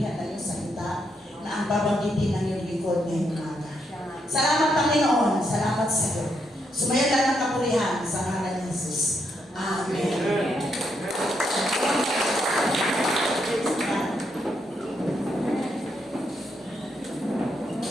ng iyong salita na ang babanggitin ng iyong lingkod ngayong umaga. Salamat, Panginoon. Salamat sa iyo. Sumayo lang ng kapurihan sa ngalan ni Jesus. Amen.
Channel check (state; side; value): normal; both; correlation 0.79